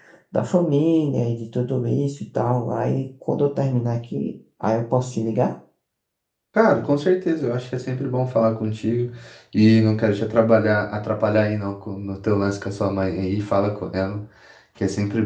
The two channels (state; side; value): identical; both; correlation 1.00